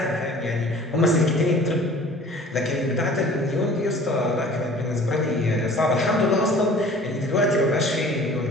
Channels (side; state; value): both; normal; correlation 0.47